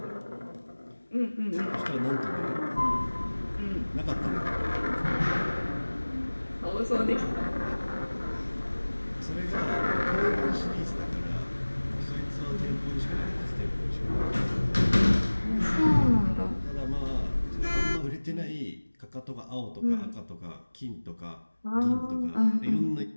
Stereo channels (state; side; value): inverted; both; correlation -1.00